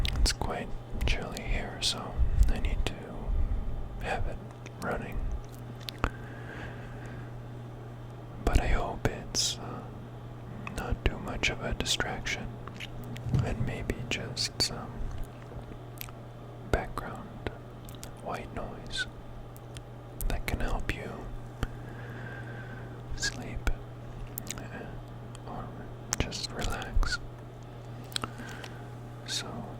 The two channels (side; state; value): both; identical; correlation 1.00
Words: it's quite chilly here, so I need to have it running. But I hope it's not too much of a distraction, and maybe just some background white noise that can help you sleep or just relax. So